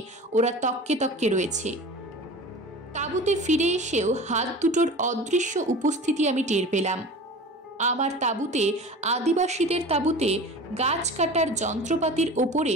ওরা তককে তককে রয়েছে। তাঁবুতে ফিরে এসেও হাত দুটোর অদৃশ্য উপস্থিতি আমি টের পেলাম। আমার তাঁবুতে, আদিবাসীদের তাঁবুতে গাছ কাটার যন্ত্রপাতির ওপরে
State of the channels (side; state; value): both; normal; correlation 0.37